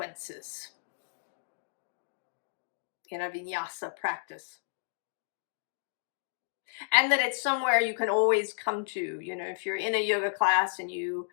in a vinyasa practice. And that it's somewhere you can always come to. If you're in a yoga class and you're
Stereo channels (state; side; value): silent; right; digital silence